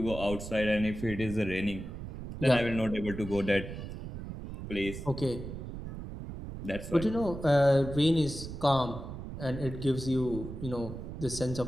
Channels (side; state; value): right; noise; rumble, 9 dB below the sound